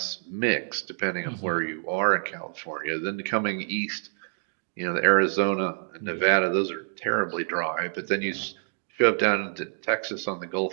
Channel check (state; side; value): silent; left; digital silence